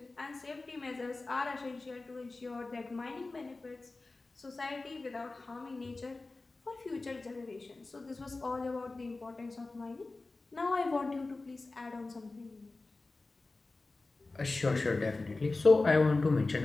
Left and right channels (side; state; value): right; quieter; 3.4 dB